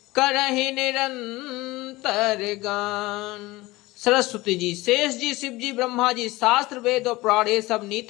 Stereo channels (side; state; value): right; quieter; 20.2 dB